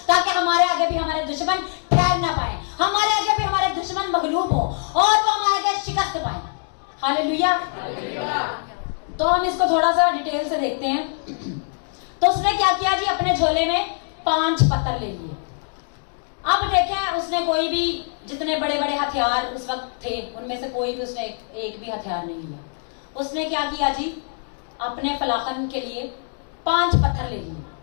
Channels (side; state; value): right; silent; 63 dB below the other